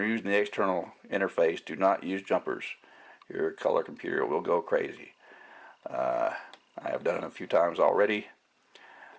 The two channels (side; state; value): both; identical; correlation 1.00